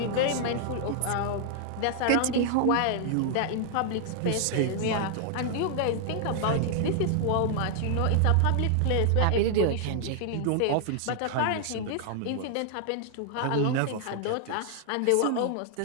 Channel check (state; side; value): different; both; correlation 0.00